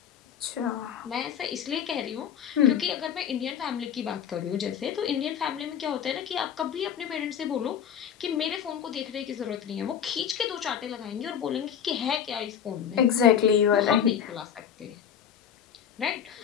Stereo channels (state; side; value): quieter; right; 8.6 dB